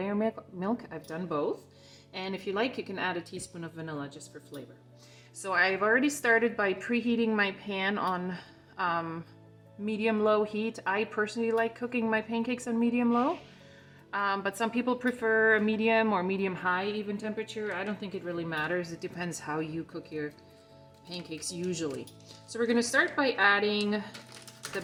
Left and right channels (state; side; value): identical; both; correlation 1.00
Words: milk. I've done both. And if you like, you can add a teaspoon of vanilla just for flavor. So I've already started by preheating my pan on medium-low heat. I personally like cooking my pancakes on medium-low, but some people prefer a medium or medium-high even temperature. I don't think it really matters. It depends how you cook your pancakes usually. So we're going to start by adding the